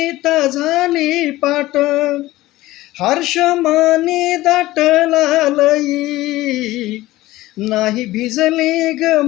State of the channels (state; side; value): quieter; right; 17.4 dB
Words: झाली पाट. हर्षमाने दाटला लई, नाही भिजली ग